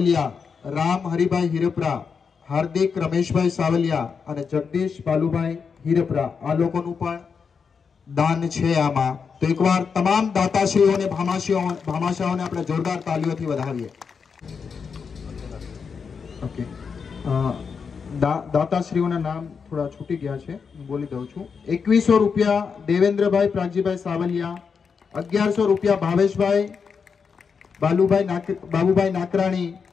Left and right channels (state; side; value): quieter; right; 5.9 dB